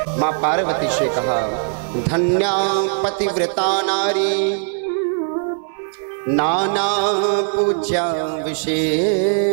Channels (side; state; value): left; silent; 66 dB below the other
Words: मां पार्वती से कहा, धन्या पतिव्रता नारी नाना पूज्या